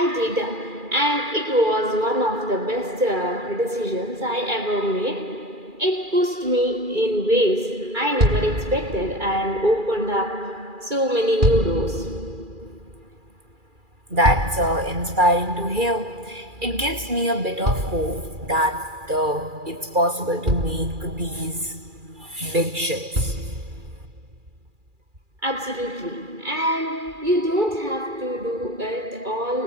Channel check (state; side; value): late; left; 2.4 ms